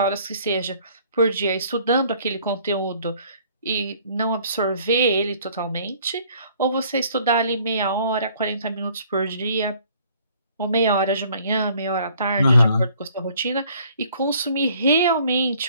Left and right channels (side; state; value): both; inverted; correlation -0.58